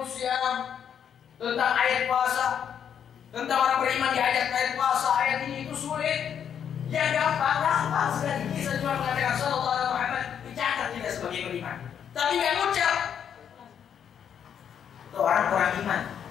syiyam, tentang ayat puasa, tentang orang beriman diajak ayat puasa, ayat ini itu sulit. Yang gampang sekali. Kita cuma mengatakan sallallahu alaihi Muhammad, dicatat kita sebagai beriman, tapi nggak ngucap. Itu orang kurang iman.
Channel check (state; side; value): quieter; right; 8.4 dB